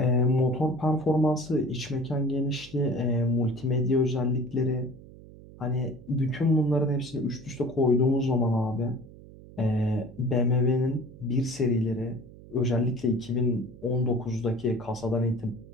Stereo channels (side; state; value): right; noise; hum, 19 dB below the sound